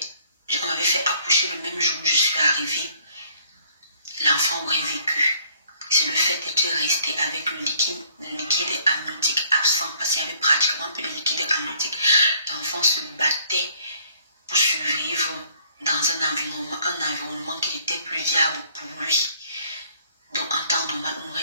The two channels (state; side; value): inverted; both; correlation -0.61